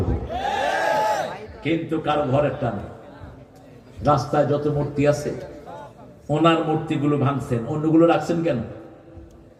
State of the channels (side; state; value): both; identical; correlation 1.00